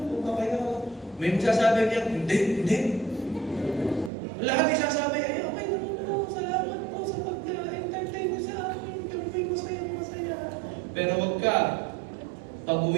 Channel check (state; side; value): drops out; left; at 4.1 s